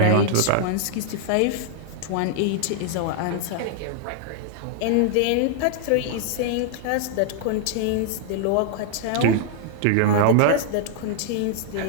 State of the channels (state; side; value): different; both; correlation 0.00